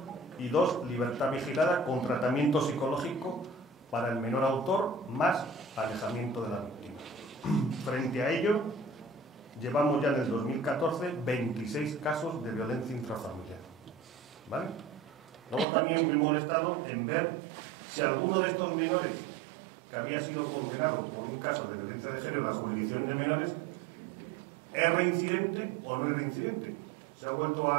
y 2, libertad vigilada con tratamiento psicológico para el menor autor más alejamiento de la víctima. Frente a ello, llevamos ya en el 2014 26 casos de violencia intrafamiliar. ¿Vale? Luego también me he molestado en ver si alguno de estos menores que había sido condenado por un caso de violencia de género en la jurisdicción de menores es reincidente o no es reincidente. Se ha vuelto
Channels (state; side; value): drops out; left; at 15.7 s